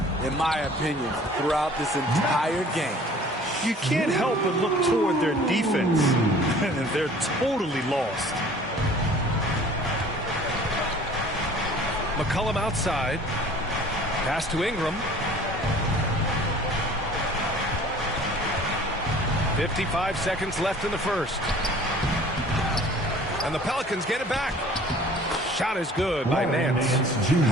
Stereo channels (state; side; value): normal; both; correlation 0.49